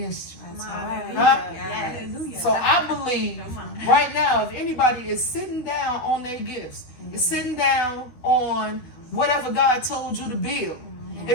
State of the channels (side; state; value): right; late; 12 ms